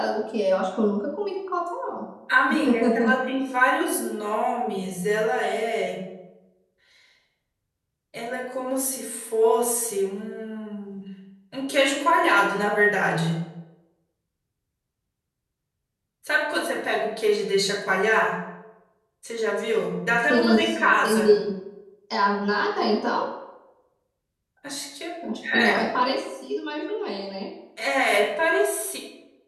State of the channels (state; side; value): identical; both; correlation 1.00